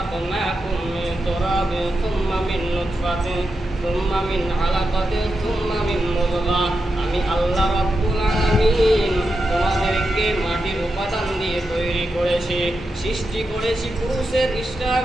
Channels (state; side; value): normal; both; correlation 0.88